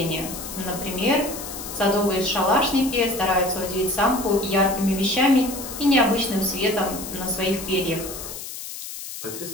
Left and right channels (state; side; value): noise; left; hiss, 10 dB below the sound